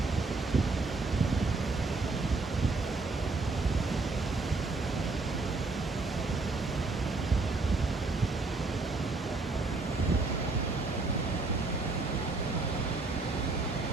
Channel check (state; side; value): quieter; left; 3.7 dB